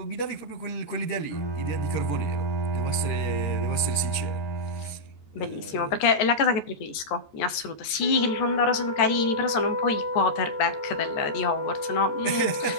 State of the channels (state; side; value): late; right; 13 ms